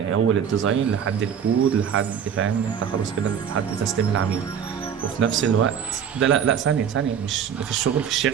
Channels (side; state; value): left; quieter; 8.0 dB